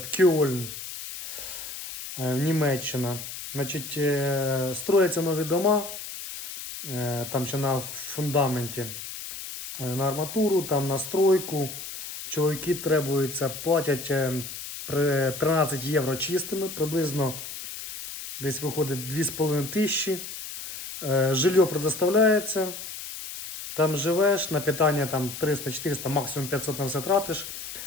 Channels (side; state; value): left; noise; hiss, 9 dB below the sound